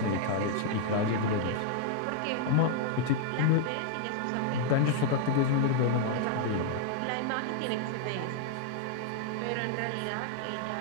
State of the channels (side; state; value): both; different; correlation -0.01